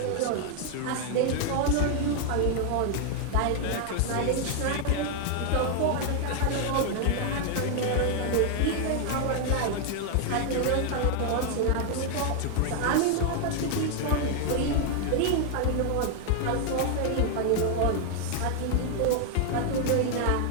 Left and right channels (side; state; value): both; different; correlation 0.00